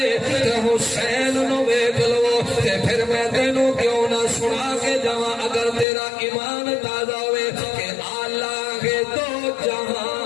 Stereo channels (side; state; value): right; drops out; at 5.9 s